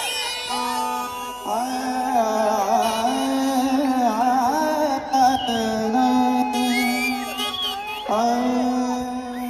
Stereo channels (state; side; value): identical; both; correlation 1.00